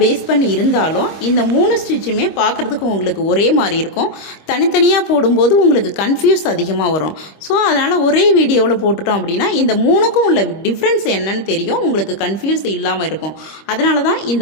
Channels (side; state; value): right; late; 25 ms